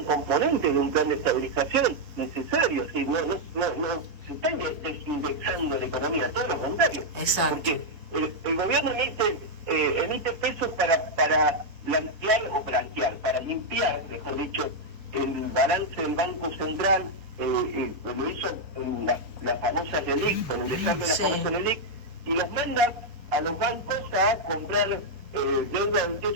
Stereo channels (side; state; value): left; late; 4.2 ms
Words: componente de un plan de estabilización necesario, ¿sí? No se está desindexando la economía, todo lo contrario. Exacto. Porque el gobierno emite pesos para para limpiar, mejor dicho, el balance del Banco Central, lo hizo en la famosa LELIC, con el desarme de la famosa LELIC, y los manda a los bancos a comprar deuda del